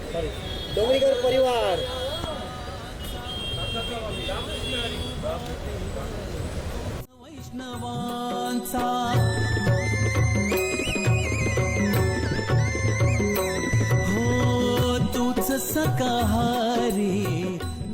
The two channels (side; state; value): both; identical; correlation 1.00